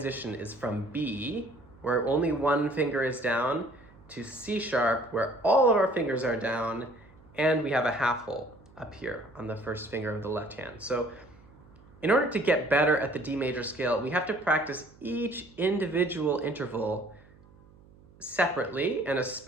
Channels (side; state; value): right; noise; hum, 25 dB below the sound